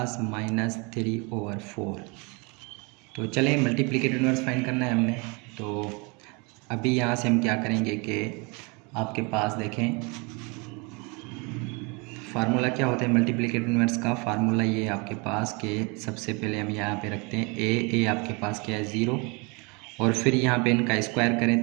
-3/4। तो चलें मल्टीप्लिकेटिव इन्वर्स फाइंड करना है हमने। तो अभी यहाँ से हम क्या करेंगे कि आपके पास देखें फार्मूला क्या होता है मल्टीप्लिकेटिव इन्वर्स का। फार्मूला ये आपके पास के सबसे पहले हम यहाँ पे रखते हैं a आपके पास क्या है 0 और फिर यहाँ पे इनका स्क्वायर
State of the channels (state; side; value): quieter; left; 30.0 dB